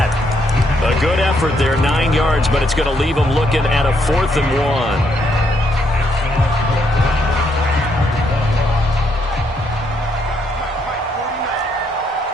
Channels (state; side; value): normal; both; correlation 0.74